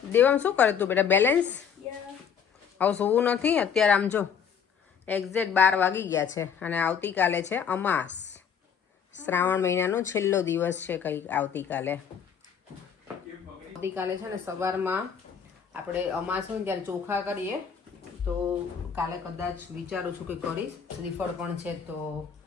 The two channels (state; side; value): quieter; right; 7.3 dB